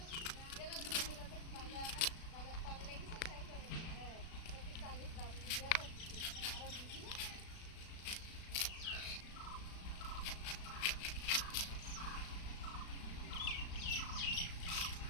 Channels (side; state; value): right; late; 36 ms